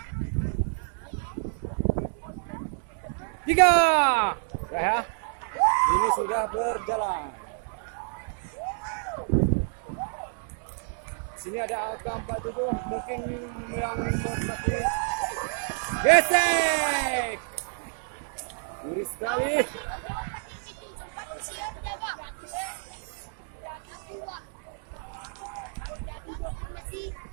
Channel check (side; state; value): left; silent; 59 dB below the other